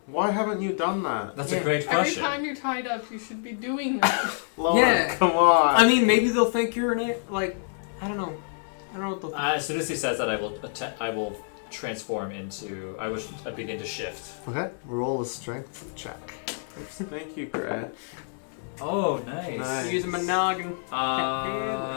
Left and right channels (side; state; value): right; silent; 60 dB below the other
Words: why haven't you done that? That's Yeah. a great Every question. time you're tied up, you should be doing that. Lonan, Yeah. come on. I mean, maybe they'll think you're an like. I don't know. I don't know what they'll think. As soon as he says that, I will transform into. I will begin to shift. Okay, roll a strength check. Thank you, Gret. Oh, nice. Nice. Use a monogamous.